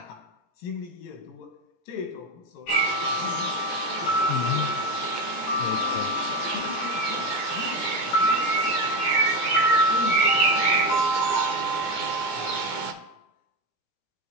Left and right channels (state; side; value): late; right; 17 ms